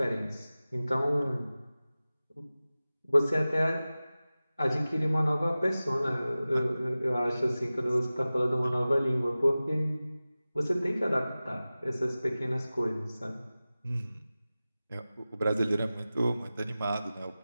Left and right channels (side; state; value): both; inverted; correlation -0.96